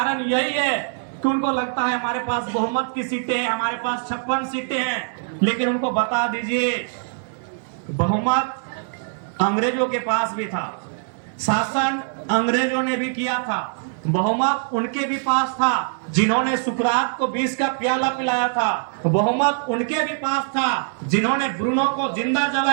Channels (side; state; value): left; silent; digital silence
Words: यही है कि उनको लगता है हमारे पास बहुमत की सीटें हैं, हमारे पास 56 सीटें हैं, लेकिन उनको बता दीजिए बहुमत अंग्रेजों के पास भी था, शासन अंग्रेजों ने भी किया था, बहुमत उनके भी पास था जिन्होंने सुकरात को 20 का प्याला पिलाया था, बहुमत उनके भी पास था जिन्होंने ब्रूनो को जिंदा